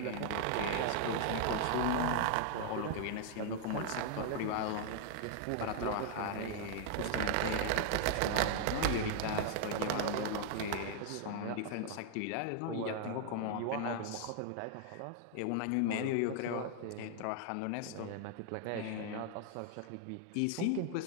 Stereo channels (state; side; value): different; both; correlation 0.00